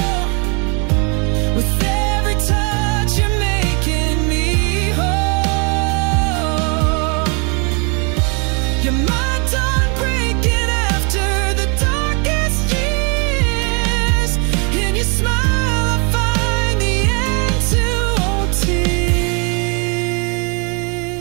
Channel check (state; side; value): quieter; left; 34.7 dB